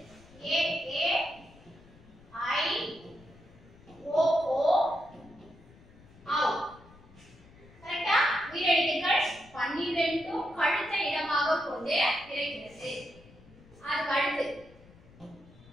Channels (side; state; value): left; noise; rumble, 24 dB below the sound